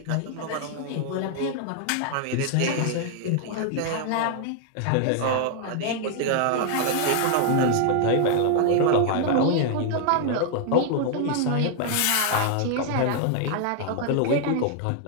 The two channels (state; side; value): different; both; correlation 0.00